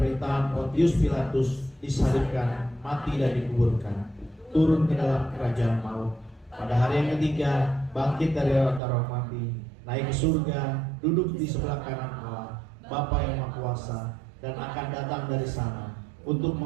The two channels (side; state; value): left; drops out; at 8.8 s